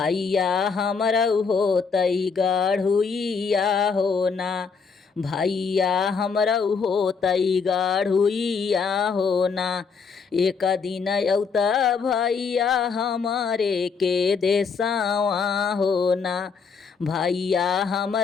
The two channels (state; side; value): quieter; right; 5.4 dB